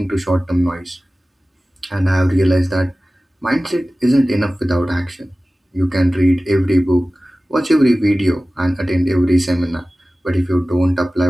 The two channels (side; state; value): both; normal; correlation 0.97